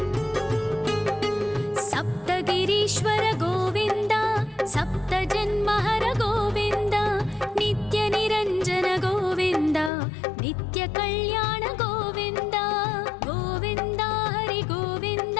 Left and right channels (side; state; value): right; drops out; at 9.9 s